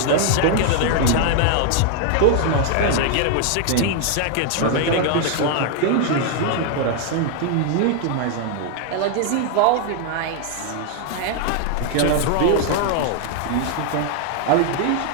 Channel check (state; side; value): different; both; correlation 0.00